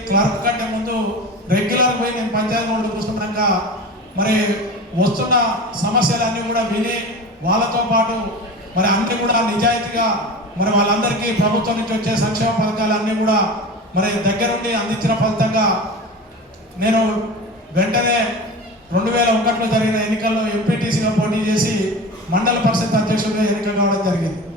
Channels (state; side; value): normal; both; correlation 0.32